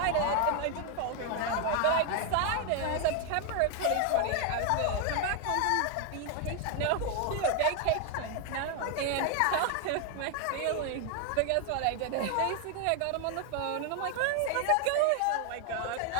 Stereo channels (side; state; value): both; different; correlation 0.01